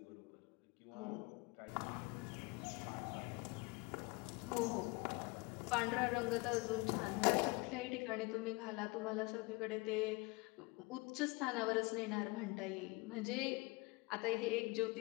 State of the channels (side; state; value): right; quieter; 25.3 dB